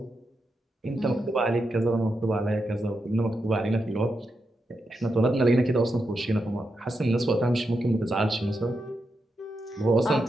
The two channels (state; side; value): normal; both; correlation 0.86